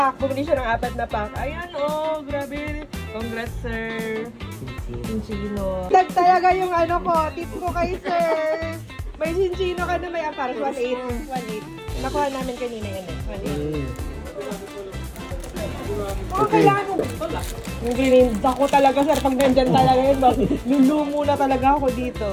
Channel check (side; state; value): both; identical; correlation 1.00